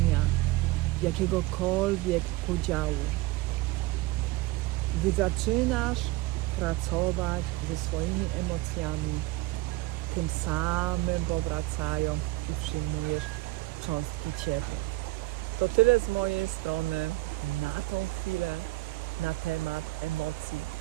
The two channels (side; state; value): left; quieter; 19.6 dB